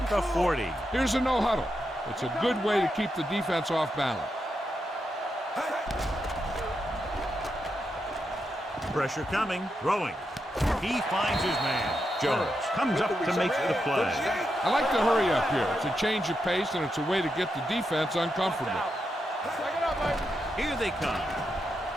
the 40. Here's a no huddle. It's a good way to keep the defense off balance. Pressure coming, throwing. He finds his man. Jones comes up to make the play. I like the hurry up here. It's a change of pace, and it's a way to get the defense uncomfortable. Here they come.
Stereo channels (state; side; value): normal; both; correlation 0.85